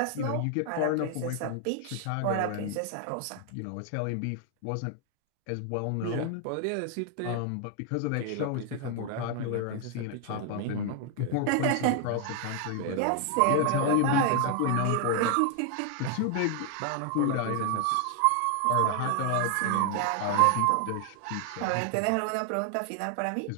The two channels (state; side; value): different; both; correlation 0.00